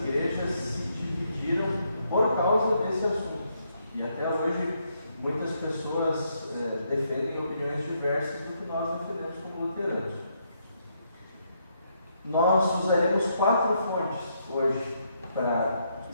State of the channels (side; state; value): both; inverted; correlation -0.76